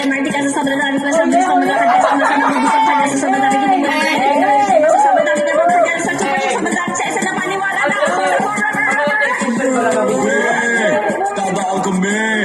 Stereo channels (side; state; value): both; identical; correlation 1.00